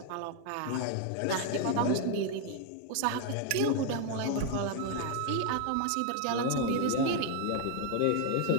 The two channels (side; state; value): both; different; correlation 0.01